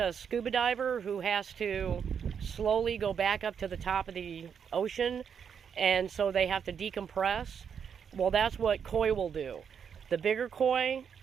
scuba diver who has to slowly go back up to the top of the ocean, and so they have to decompress. Well, that's what koi will do. The bigger koi,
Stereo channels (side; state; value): left; quieter; 7.3 dB